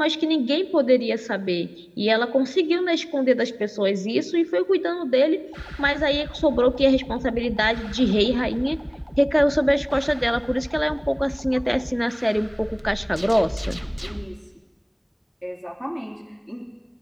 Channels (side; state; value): both; identical; correlation 1.00